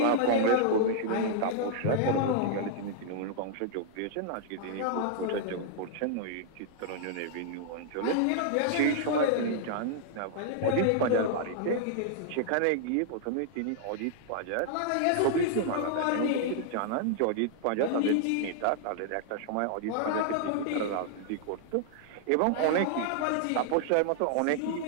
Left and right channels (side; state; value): both; different; correlation -0.01